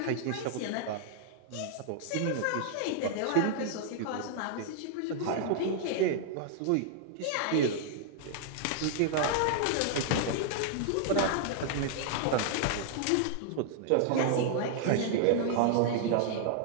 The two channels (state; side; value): different; both; correlation -0.01